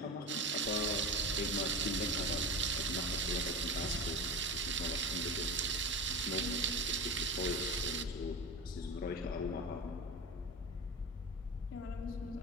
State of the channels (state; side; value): normal; both; correlation 0.25